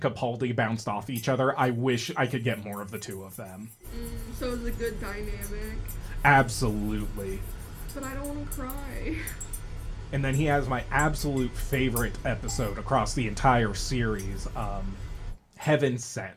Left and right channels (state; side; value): identical; both; correlation 1.00